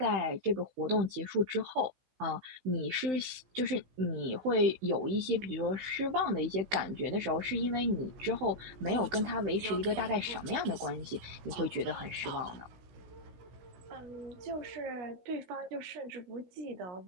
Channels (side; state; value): left; late; 16 ms